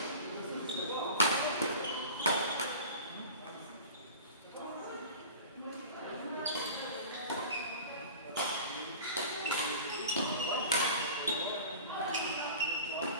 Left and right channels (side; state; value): both; inverted; correlation -0.37